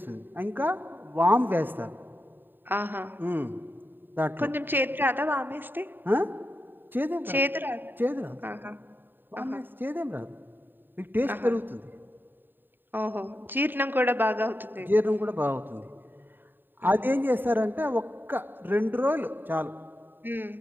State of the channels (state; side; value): late; left; 0.093 ms